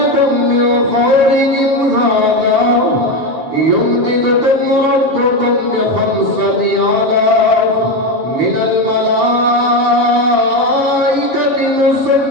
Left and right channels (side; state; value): left; late; 7.2 ms